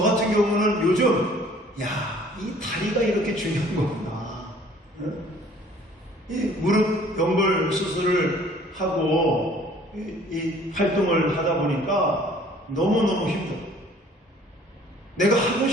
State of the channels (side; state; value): both; normal; correlation 0.54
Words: 같은 경우는 요즘 이 다리가 이렇게 중요한 거구나. 이 무릎 연골 수술을 하고 이 활동을 하다 보니까 너무너무 힘들어. 내가 하고